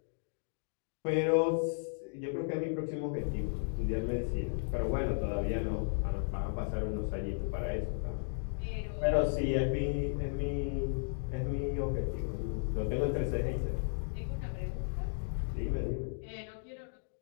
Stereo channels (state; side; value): silent; right; digital silence